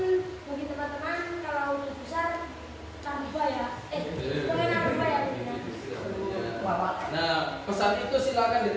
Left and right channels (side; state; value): both; identical; correlation 1.00